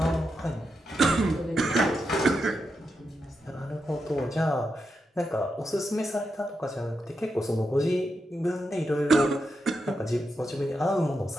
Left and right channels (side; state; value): both; normal; correlation 0.86